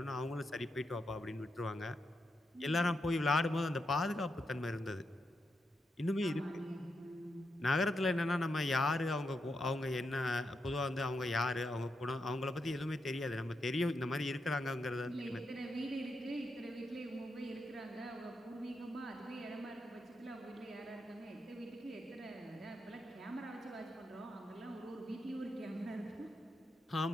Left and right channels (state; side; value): normal; both; correlation 0.84